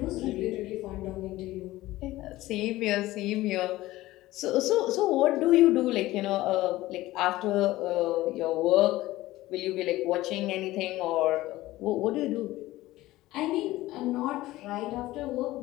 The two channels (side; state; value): right; quieter; 17.2 dB